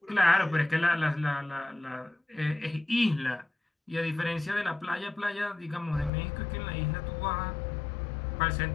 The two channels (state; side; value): drops out; right; at 6.1 s